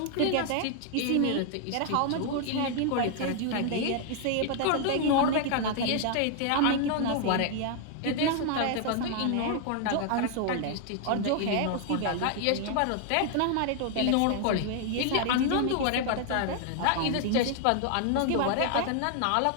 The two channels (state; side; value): different; both; correlation 0.00